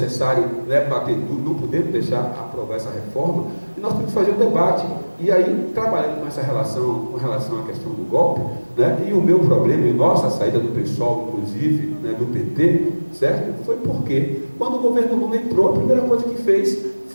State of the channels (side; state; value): both; inverted; correlation -1.00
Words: né, bater duro, não podemos deixar aprovar essa reforma, e nós temos que fazer um debate. E aí, trabalhando com essa relação, com relação à questão do golpe, né, e o meu problema, e nossa saída do PSOL, inclusive, né, do PT, certo? Foi porque, quando o governo Lula entrou, a primeira coisa que fez